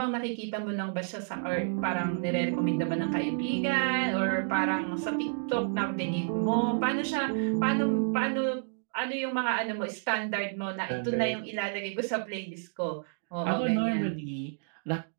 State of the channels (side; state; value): left; silent; digital silence